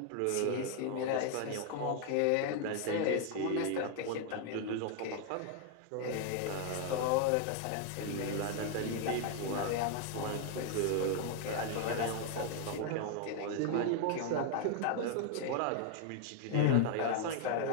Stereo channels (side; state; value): both; different; correlation 0.00